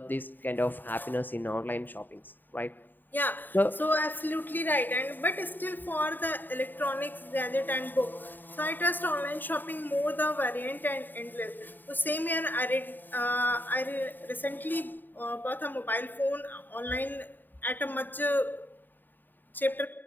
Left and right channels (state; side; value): late; right; 0.090 ms